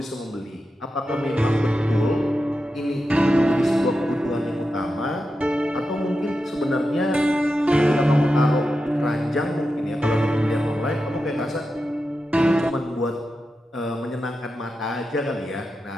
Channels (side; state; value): both; normal; correlation 0.90